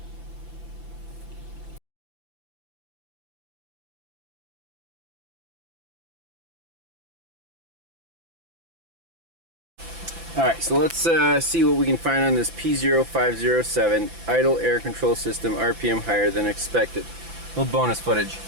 Alright, so let's see what we can find on this P0507 idle air control system, RPM higher than expected. A little bonus footage.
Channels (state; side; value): late; left; 5.9 ms